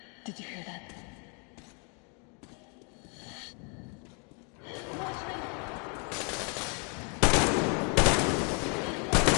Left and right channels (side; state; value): right; quieter; 36.9 dB